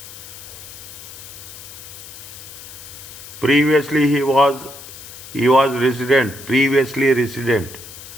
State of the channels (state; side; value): noise; left; hiss, 15 dB below the sound